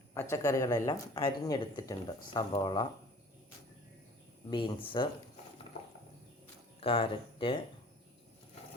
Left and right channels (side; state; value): both; normal; correlation 0.48